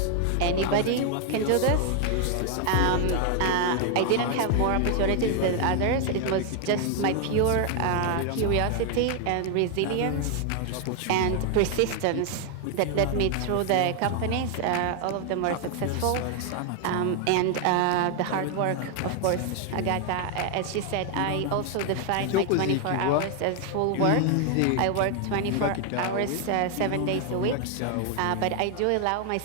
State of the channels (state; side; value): different; both; correlation 0.00